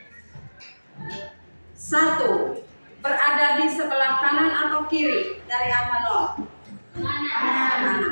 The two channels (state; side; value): inverted; both; correlation -1.00